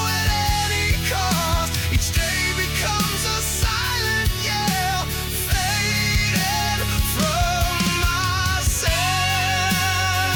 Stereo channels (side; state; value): both; identical; correlation 1.00